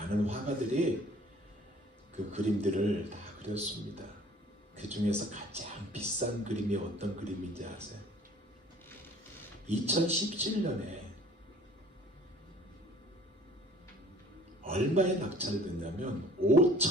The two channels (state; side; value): normal; both; correlation 0.52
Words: 화가들이 그 그림들을 다 그렸습니다. 그 중에서 가장 비싼 그림이 어떤 그림인지 아세요? 2017년에 얼마에 낙찰됐냐면